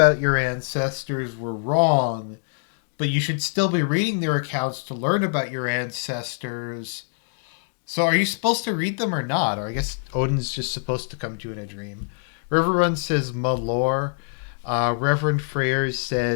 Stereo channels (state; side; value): silent; right; digital silence